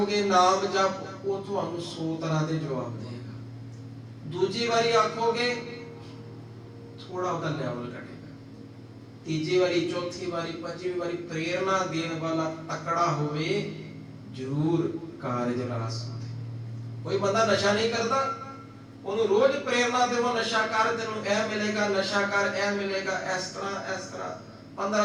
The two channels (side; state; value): both; identical; correlation 1.00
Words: ਨਾਮ ਜਪ, ਉਹ ਤੁਹਾਨੂੰ 100 ਤਰ੍ਹਾਂ ਦੇ ਜਵਾਬ ਦੇਗਾ। ਦੂਜੀ ਵਾਰੀ ਆਖੋਗੇ ਥੋੜਾ ਉਹਦਾ ਲੈਵਲ ਘਟੇਗਾ। ਤੀਜੀ ਵਾਰੀ, ਚੌਥੀ ਵਾਰੀ, ਪੰਜਵੀਂ ਵਾਰੀ ਪ੍ਰੇਰਣਾ ਦੇਣ ਵਾਲਾ ਤਕੜਾ ਹੋਵੇ, ਜ਼ਰੂਰ ਕਾਰਜ ਰਾਸ ਹੁੰਦੇ। ਕੋਈ ਬੰਦਾ ਨਸ਼ਾ ਨਹੀਂ ਕਰਦਾ, ਉਹਨੂੰ ਰੋਜ਼ ਪ੍ਰੇਰਣਾ ਦੇਵੋ, ਨਸ਼ਾ ਕਰ, ਤੈਨੂੰ ਇਹ ਮਿਲੇਗਾ, ਨਸ਼ਾ ਕਰ, ਇਹ ਮਿਲੇਗਾ, ਇਸ ਤਰ੍ਹਾਂ